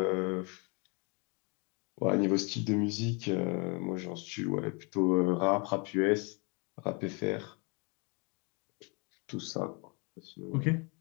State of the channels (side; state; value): right; quieter; 32.8 dB